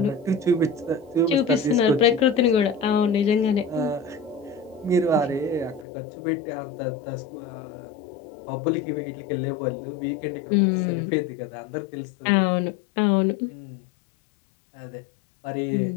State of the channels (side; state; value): right; drops out; at 5.9 s